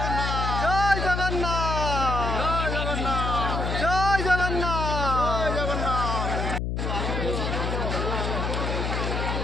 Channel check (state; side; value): noise; left; hum, 1 dB below the sound